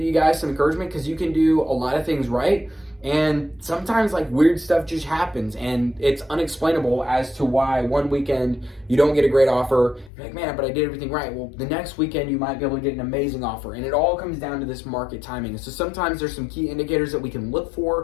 you guys some encouragement, because you can do a lot of things right. And sometimes weird stuff just happens, and it's unexplainable as to why one weekend you don't get a great offer. You're like, man, but I did everything right. Well, the next weekend you might be able to get an amazing offer, and it all comes down to this market timing. So sometimes there's some key indicators that we can look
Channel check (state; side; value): drops out; right; at 10.1 s